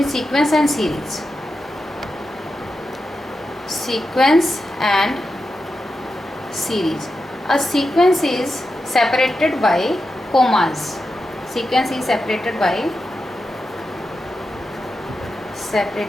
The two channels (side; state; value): both; normal; correlation 0.89